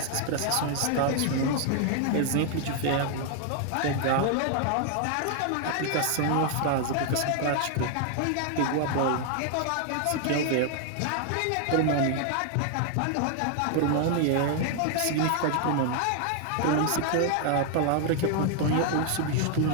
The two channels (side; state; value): both; different; correlation 0.00